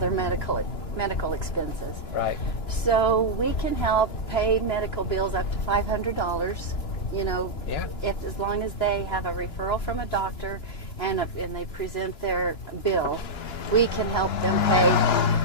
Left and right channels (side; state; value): right; late; 2.9 ms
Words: medical expenses. Right. So we can help pay medical bills up to $500. If as long as they have a referral from a doctor and they present their bill, we can help them pay